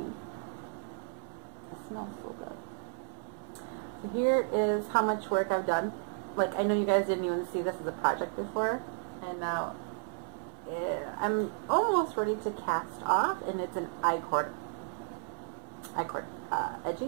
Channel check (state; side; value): silent; left; 56 dB below the other